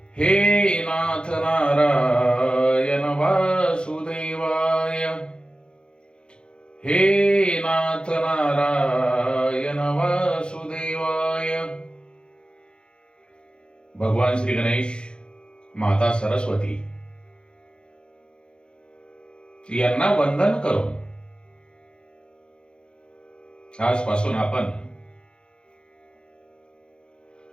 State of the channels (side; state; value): right; late; 0.052 ms